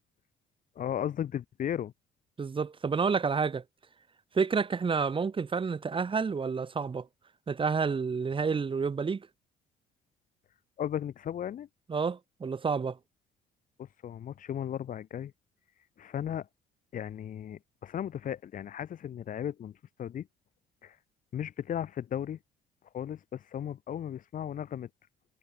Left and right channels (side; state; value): both; normal; correlation 0.47